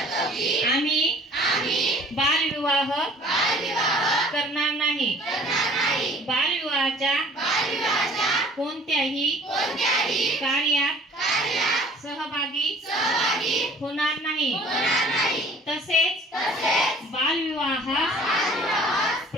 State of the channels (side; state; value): both; normal; correlation 0.50